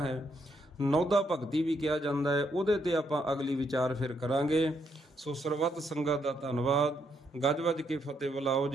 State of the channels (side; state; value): both; normal; correlation 0.76